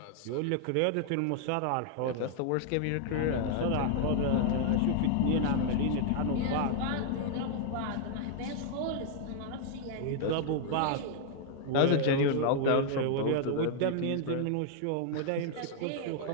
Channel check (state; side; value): different; both; correlation 0.00